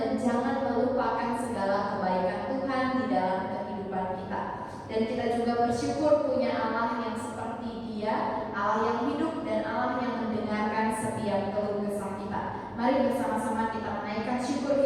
jangan melupakan segala kebaikan Tuhan di dalam kehidupan kita. Dan kita juga bersyukur punya Allah yang seperti Dia, Allah yang hidup dan Allah yang mendengarkan setiap keluh kesah kita. Mari bersama-sama kita menaikkan syukur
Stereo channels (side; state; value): both; identical; correlation 1.00